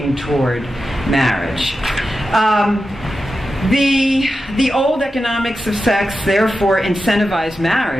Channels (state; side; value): normal; both; correlation 0.91